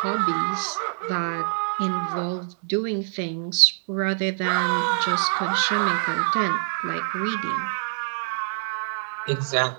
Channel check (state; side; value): silent; left; digital silence